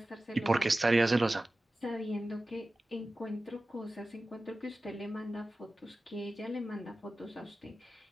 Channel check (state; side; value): normal; both; correlation 0.96